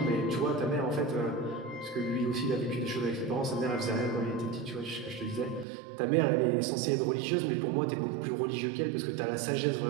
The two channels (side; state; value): left; drops out; at 5.7 s